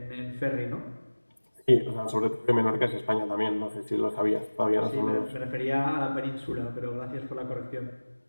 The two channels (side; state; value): both; inverted; correlation -1.00